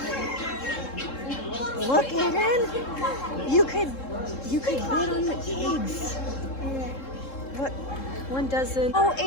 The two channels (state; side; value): late; right; 3.7 ms